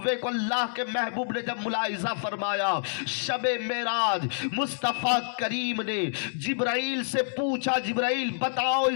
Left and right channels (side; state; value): right; silent; digital silence